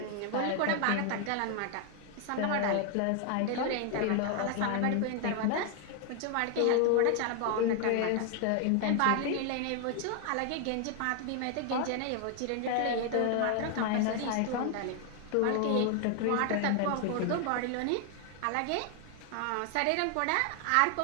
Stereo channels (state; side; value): different; both; correlation 0.00